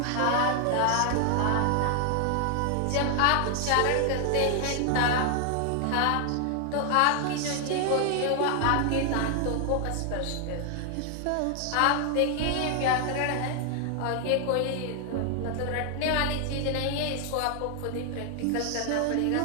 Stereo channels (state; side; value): different; both; correlation 0.00